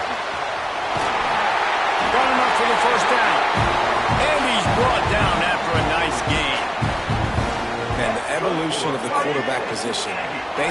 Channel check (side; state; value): both; identical; correlation 1.00